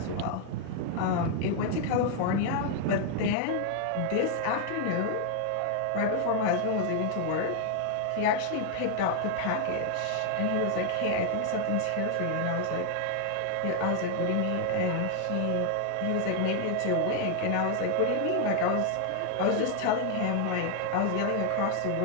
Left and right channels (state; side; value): different; both; correlation 0.00